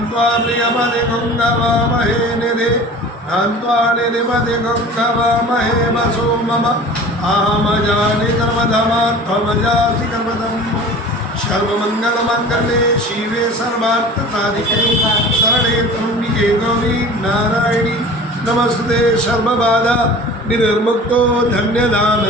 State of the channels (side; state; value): both; normal; correlation 0.40